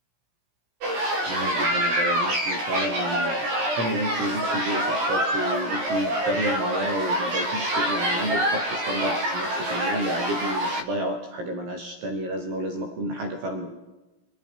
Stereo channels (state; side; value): late; left; 17 ms